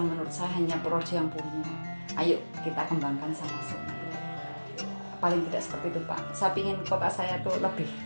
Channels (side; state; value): both; inverted; correlation -1.00